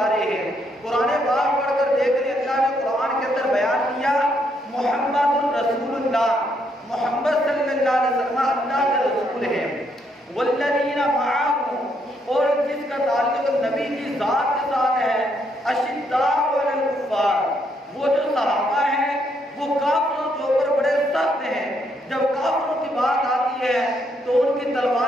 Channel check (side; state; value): both; normal; correlation 0.74